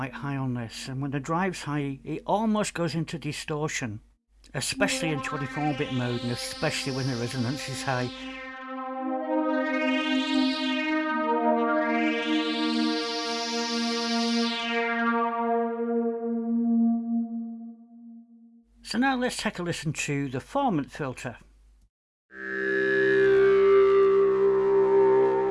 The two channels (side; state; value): both; identical; correlation 1.00